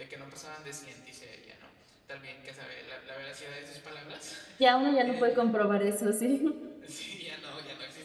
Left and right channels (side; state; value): both; identical; correlation 1.00